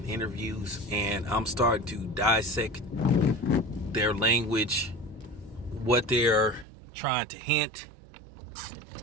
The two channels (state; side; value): drops out; left; at 6.7 s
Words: interviews, and I'm starting to dissect their language, what they're trying to hint